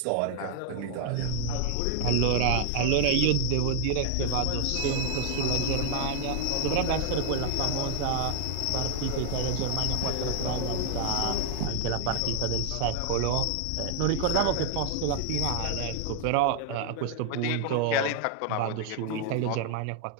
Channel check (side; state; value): both; different; correlation 0.00